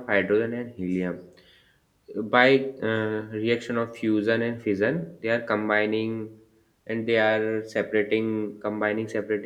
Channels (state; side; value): identical; both; correlation 1.00